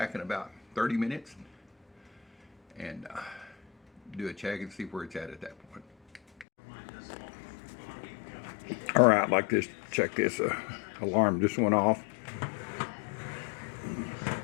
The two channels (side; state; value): right; drops out; at 6.5 s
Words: in about 30 minutes and do a check and see where it's at that point. All right, like this, check this alarm just went off.